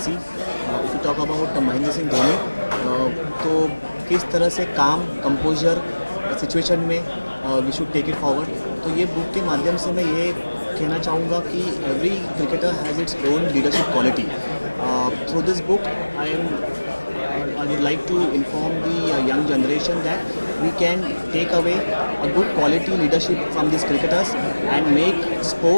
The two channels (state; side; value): inverted; both; correlation -1.00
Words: If you talk about Mahendra Singh Dhoni, तो किस तरह से काम कंपोजर सिचुएशन में we should take it forward. तो ये बुक के माध्यम से मैं ये कहना चाहूँगा कि every cricketer has its own leadership quality. Through this book I would like to inform the young generation that we can take away a good quality leadership from these cricketers and make